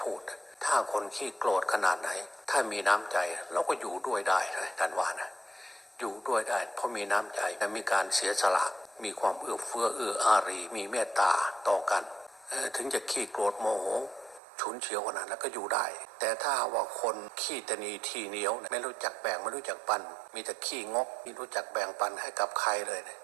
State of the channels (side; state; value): left; drops out; at 14.4 s